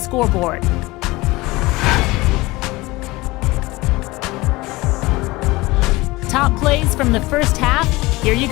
Top plays from the first half. Here you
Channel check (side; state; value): right; quieter; 21.2 dB